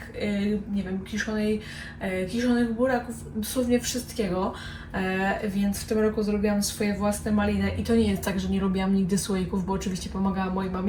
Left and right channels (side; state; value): both; identical; correlation 1.00